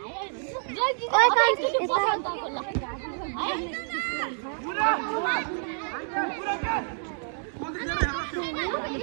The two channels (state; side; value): silent; left; 59 dB below the other